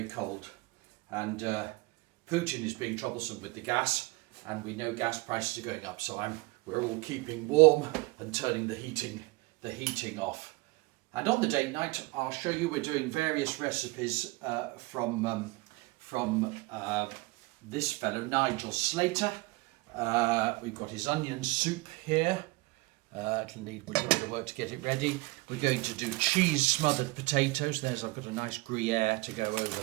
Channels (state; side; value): quieter; left; 23.3 dB